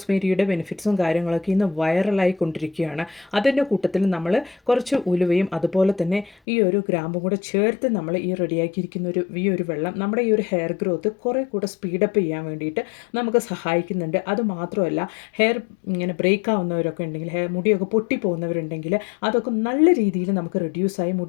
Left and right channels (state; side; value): drops out; right; at 6.4 s